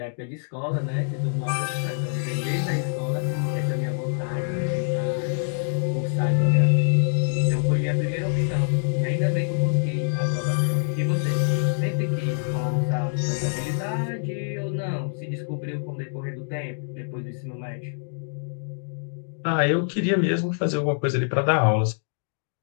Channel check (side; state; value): right; silent; digital silence